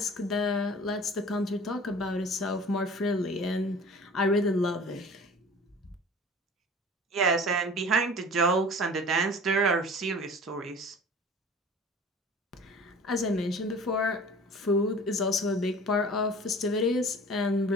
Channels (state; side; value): normal; both; correlation 0.43